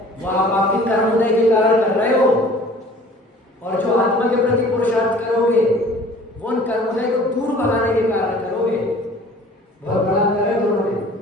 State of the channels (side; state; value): both; normal; correlation 0.49